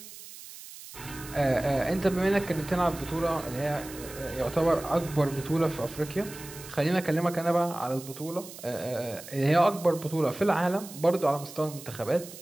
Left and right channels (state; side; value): noise; right; hiss, 15 dB below the sound